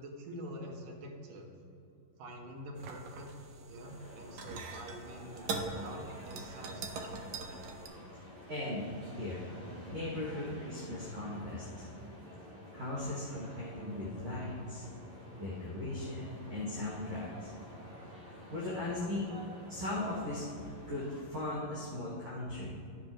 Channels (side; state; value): left; late; 11 ms